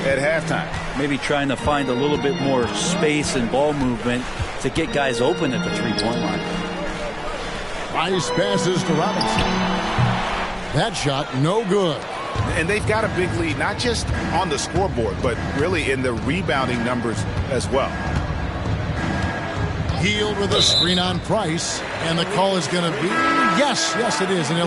halftime. Maybe trying to find a little bit more space and ball movement to get guys open at the three-point line. Price passes to Robinson. That shot, no good. And they've got a big lead, not just on the scoreboard, but really in the rebounding numbers as well. Healed with a screen on Price, and the call is going to be, yes, it is, an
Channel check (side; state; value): both; identical; correlation 1.00